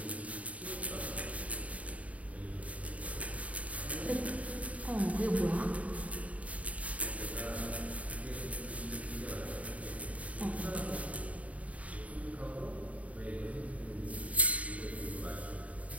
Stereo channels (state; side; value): late; left; 0.068 ms